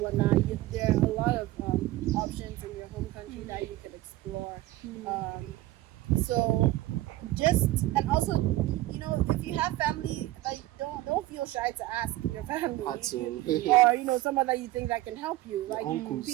there are a lot of options in your home country that you can explore. So and also, if you have family, like don't feel shy to ask your family or someone that you think that can help you. Like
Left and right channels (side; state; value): left; quieter; 16.8 dB